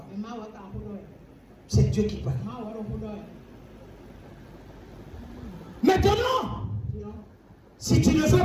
C'est Dieu qui parle. Maintenant, si tu ne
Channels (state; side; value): identical; both; correlation 1.00